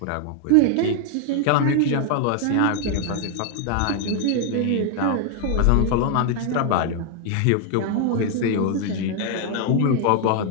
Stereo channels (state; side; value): different; both; correlation 0.00